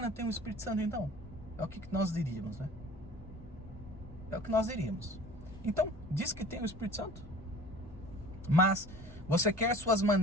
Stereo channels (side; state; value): both; normal; correlation 0.45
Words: tem o Espírito Santo então? É o que nós diríamos, né? É o que nós diríamos. Então, diz que tem o Espírito Santo. Mas você quer suas